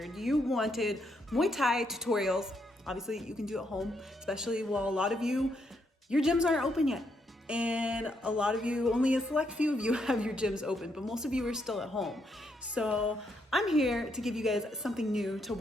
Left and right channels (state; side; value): normal; both; correlation 0.77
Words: You wanted Muay Thai tutorials. Obviously you can do at home, especially while a lot of you, your gyms aren't open yet. And a lot of you, only a select few of you have your gyms open, but most of you are still at home. So I'm here to give you guys something new to